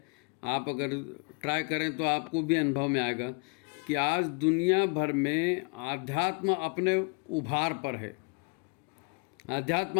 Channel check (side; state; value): right; quieter; 35.7 dB